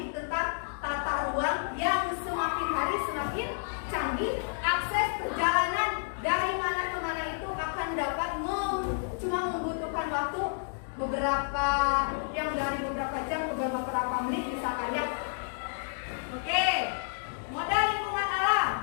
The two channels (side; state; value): right; silent; digital silence